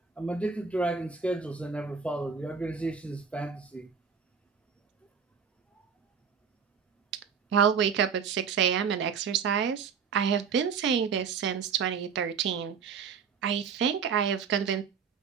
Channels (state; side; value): quieter; left; 6.4 dB